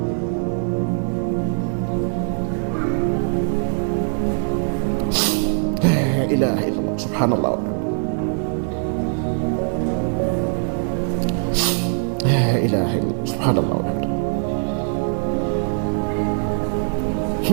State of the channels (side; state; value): left; silent; 62 dB below the other